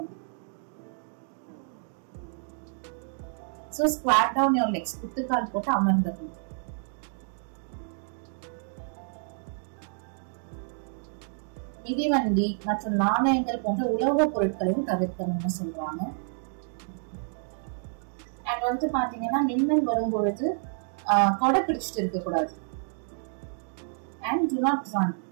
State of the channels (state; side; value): silent; left; digital silence